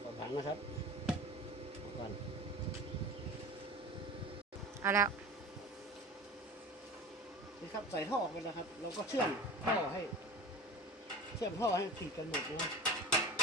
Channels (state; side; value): normal; both; correlation 0.34